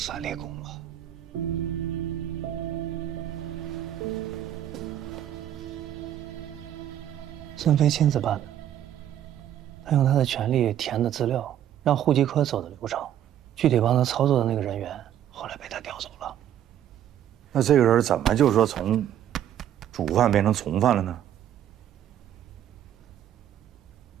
立功吧？孙飞亲自办的，他用他的权力填的资料，让户籍科走的流程，具体帮他操作的那个人员，后来被他调走了。那这个人怎么就说从主犯变成从犯了呢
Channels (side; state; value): left; quieter; 10.8 dB